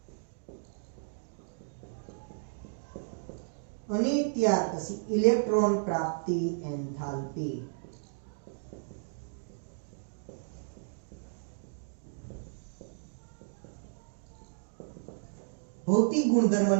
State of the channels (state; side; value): silent; left; digital silence